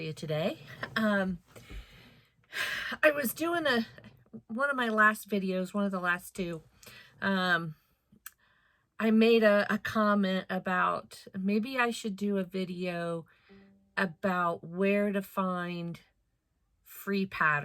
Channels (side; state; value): both; identical; correlation 1.00